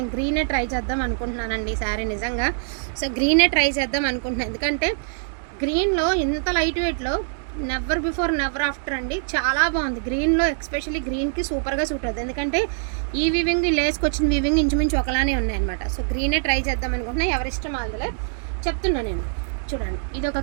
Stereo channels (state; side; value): silent; left; digital silence